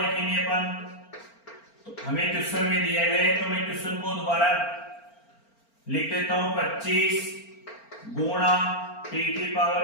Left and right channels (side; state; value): right; late; 4.4 ms